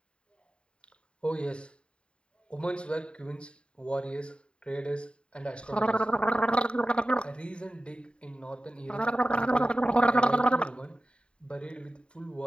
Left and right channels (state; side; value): late; right; 0.053 ms